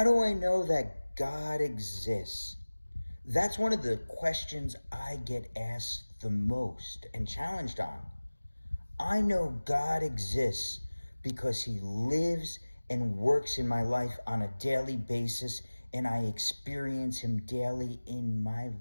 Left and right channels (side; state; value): both; inverted; correlation -1.00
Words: do I know that God exists? That's one of the questions I get asked the most and challenged on. I know God exists because he lives and works in my life on a daily basis, and I experience him daily in my